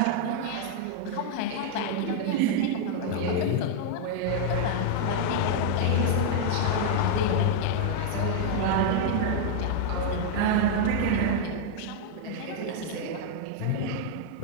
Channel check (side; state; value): both; different; correlation -0.01